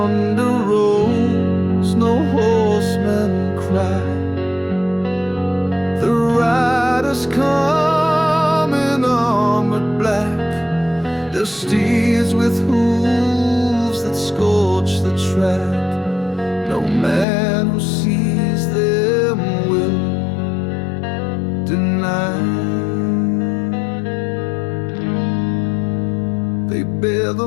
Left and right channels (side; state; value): right; drops out; at 17.2 s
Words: rolls, no horsemen cry. The riders come in armored black, their steeds with hooves that scorch the track. No man who sees them will deny. They bear